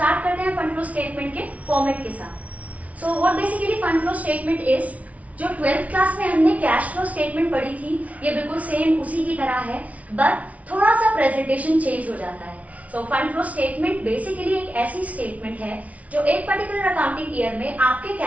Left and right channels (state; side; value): late; left; 0.068 ms